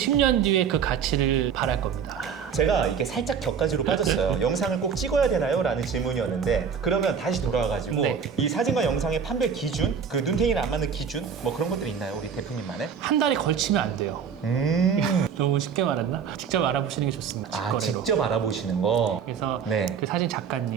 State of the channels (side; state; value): left; quieter; 6.8 dB